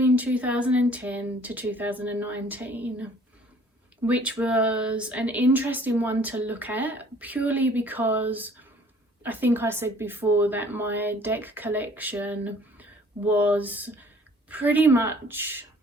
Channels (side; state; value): both; normal; correlation 0.55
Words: 2010 to 2019, which was an interesting one to look at purely because I think I said before that my deck collection was pretty much,